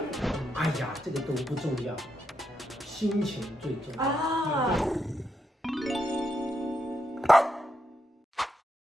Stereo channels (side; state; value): both; normal; correlation 0.82